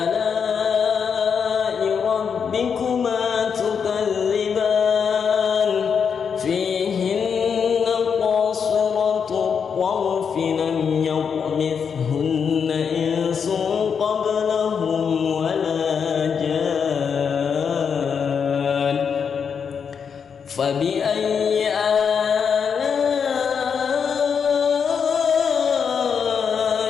ربكما تكذبان فيهن قاصرات الطرف لم يطمثهن إنس قبلهم ولا جان فبأي آلاء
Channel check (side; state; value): right; quieter; 6.6 dB